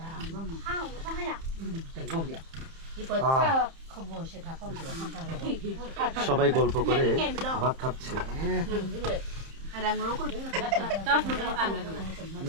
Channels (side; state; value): left; late; 30 ms